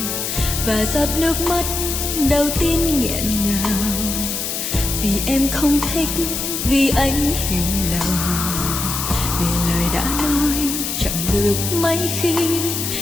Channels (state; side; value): noise; left; hiss, 3 dB below the sound